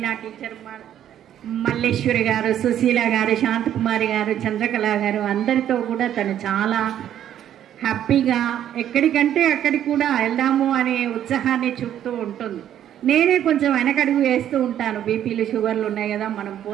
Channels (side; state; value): left; quieter; 10.7 dB